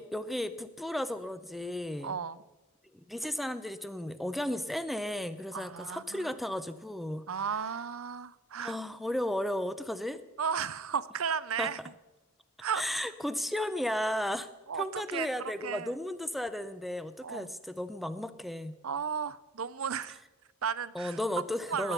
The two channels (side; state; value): both; normal; correlation 0.57